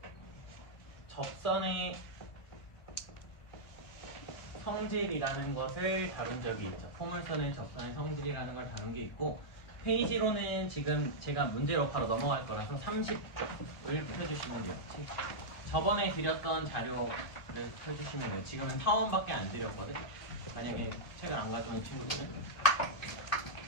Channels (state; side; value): late; right; 2.4 ms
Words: 접선의 성질이라는 것을 다룬 적이 있죠. 포물선의 접선의 성질이라는 걸 다룬 게 있고, 페이지로는 지금 제가 문제로 바로 넘어갈 거라서 30쪽을 펴주시면 돼요. 저번에 드렸던 자료를 펴주시면 돼요. 지금은 타원밖에 안 드렸거든. 만약에 책을 안 가져온 친구들은